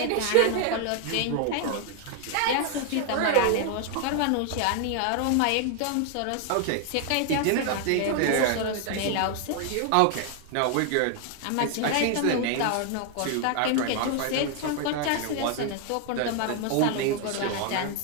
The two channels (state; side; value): different; both; correlation 0.00